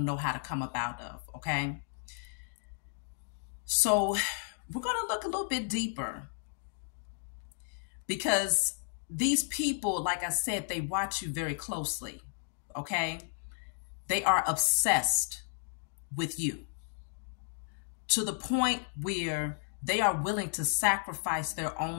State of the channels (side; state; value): right; silent; digital silence